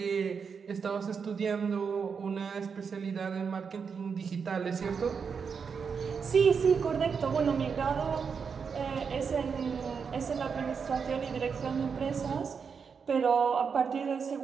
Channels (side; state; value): left; quieter; 6.0 dB